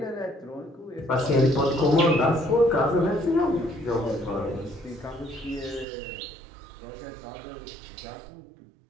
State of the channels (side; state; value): left; drops out; at 5.9 s